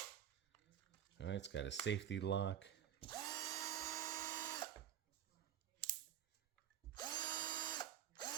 All right, it's got a safety lock.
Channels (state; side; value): quieter; left; 10.1 dB